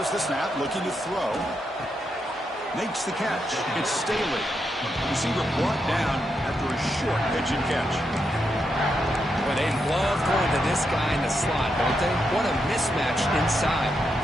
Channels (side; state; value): both; normal; correlation 0.83